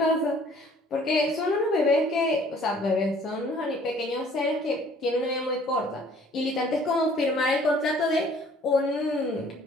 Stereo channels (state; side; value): normal; both; correlation 0.56